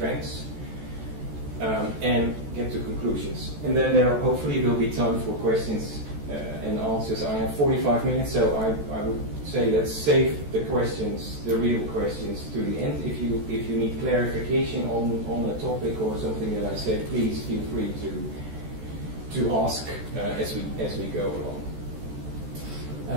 and get to conclusions. And then there hopefully will be time for questions and answers. I have 45 minutes, so I would say let's save the questions, the real questions, to the end. If you need clarification on a topic or something that I said, please feel free to ask as we go along.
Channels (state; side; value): late; left; 14 ms